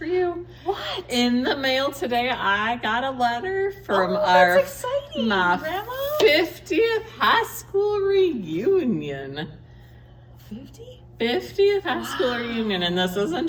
you. What? In the mail today, I got a letter from that's exciting, my Grandma. 50th high school reunion. 50th high school reunion, and this isn't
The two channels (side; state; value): both; identical; correlation 1.00